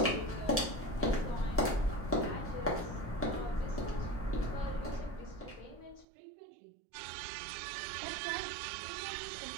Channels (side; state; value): left; drops out; at 6.1 s